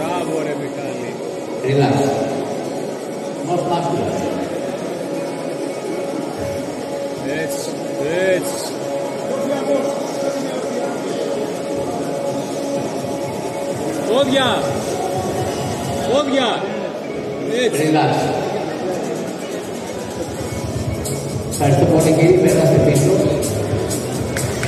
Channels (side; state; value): both; identical; correlation 1.00